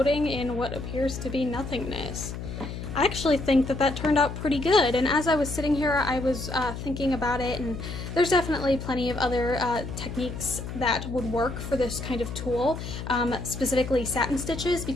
in what appears to be nothingness. I actually think that that turned out pretty good, and as I was sitting here I was thinking about it, and there's definitely plenty of other techniques that would work for this kind of tool. Specifically satin stitches,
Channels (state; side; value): noise; left; hum, 8 dB below the sound